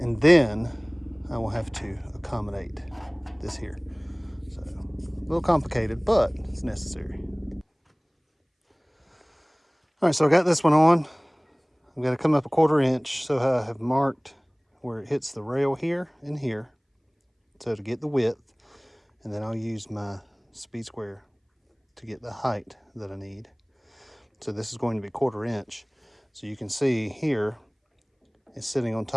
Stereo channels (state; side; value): identical; both; correlation 1.00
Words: then I will have to accommodate this here. So a little complicated, but it's necessary. All right, so I got this one on. I'm gonna come up a 1/4 inch, so I have marked where it hits the rail here and here, so to get the width, and then I'll use my speed square to get the height that I need. So this is going to be 1/4 inch. So you can see here, it's sitting on